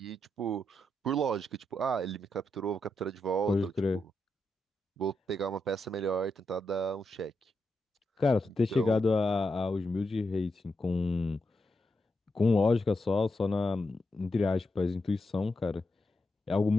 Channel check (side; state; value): both; normal; correlation 0.84